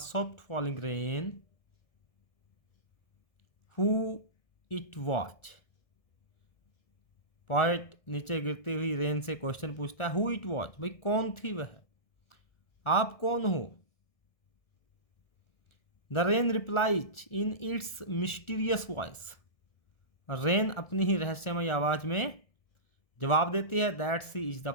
falling rain who it watch, poet नीचे गिरती हुई रेन से क्वेश्चन पूछता है, हु इट वॉच, भाई कौन थी वह, आप कौन हो। The rain replies in its mysterious voice, rain अपनी ही रहस्यमय आवाज में जवाब देती है, that sea is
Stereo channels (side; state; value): right; late; 1.6 ms